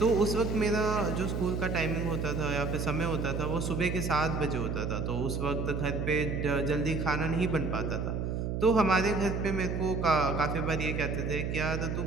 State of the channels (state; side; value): noise; right; hum, 2 dB below the sound